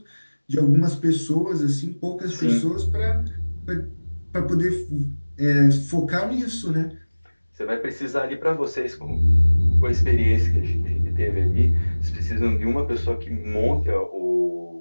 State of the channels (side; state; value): both; inverted; correlation -1.00